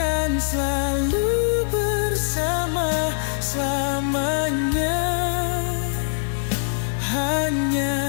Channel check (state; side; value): silent; right; digital silence